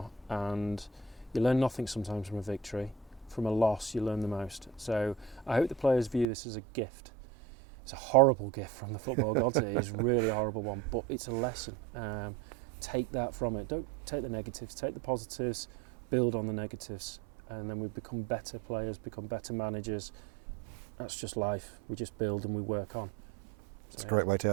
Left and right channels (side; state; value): left; drops out; at 6.2 s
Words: And you learn nothing sometimes from a victory. From a loss, you learn the most. So I hope the players view this as a gift. It's a horrible gift from the football gods. It is really a horrible one, but it's a lesson. Take that from it. Don't take the negatives. Take the positives, build on the negatives, and then we become better players, become better managers. That's just life. We just build and we work on. It's a great way to